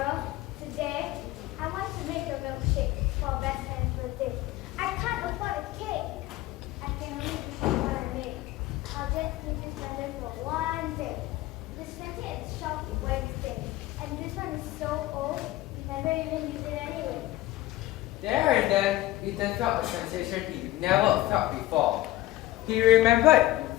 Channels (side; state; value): right; quieter; 16.7 dB